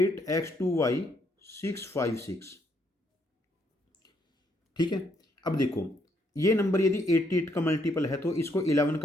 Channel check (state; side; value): normal; both; correlation 0.72